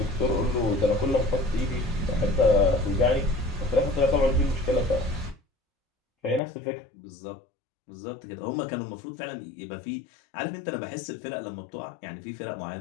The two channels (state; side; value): drops out; right; at 6.4 s